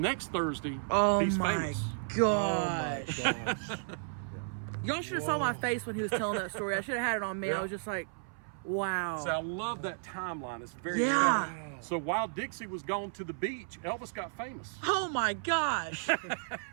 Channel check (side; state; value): left; silent; 56 dB below the other